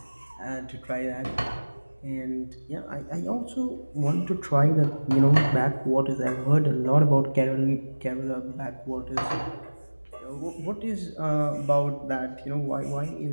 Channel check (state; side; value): inverted; both; correlation -1.00